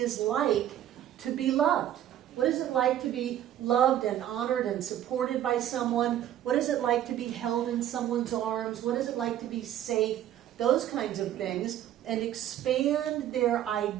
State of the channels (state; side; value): quieter; left; 11.6 dB